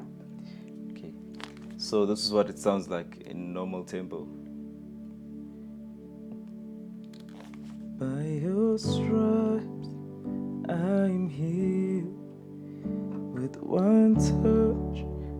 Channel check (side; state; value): both; identical; correlation 1.00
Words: Okay, so this is what it sounds like in normal tempo. By your stripes I'm healed, with one touch